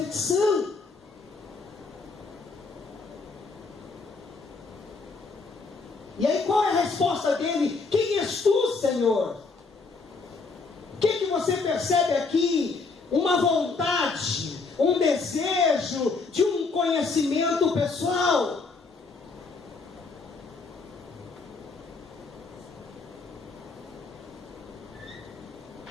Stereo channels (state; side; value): quieter; right; 4.2 dB